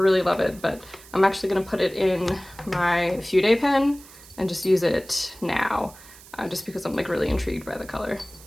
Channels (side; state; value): right; noise; hiss, 21 dB below the sound